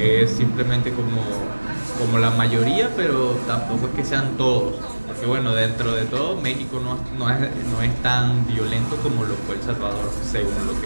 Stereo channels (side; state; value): both; inverted; correlation -1.00